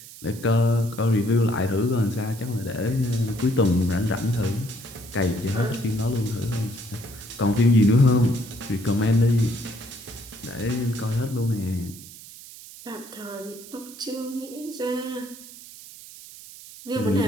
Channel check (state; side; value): noise; right; hiss, 17 dB below the sound